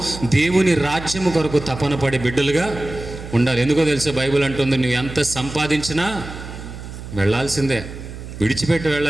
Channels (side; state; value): right; noise; hum, 12 dB below the sound